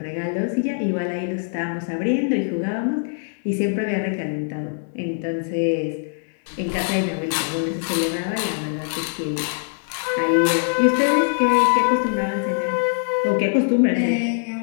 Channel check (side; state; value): right; silent; 64 dB below the other